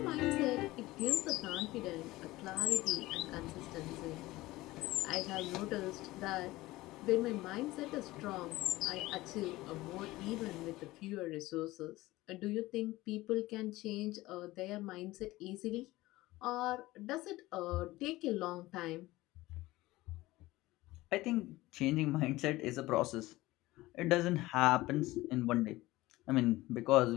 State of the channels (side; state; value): right; quieter; 18.6 dB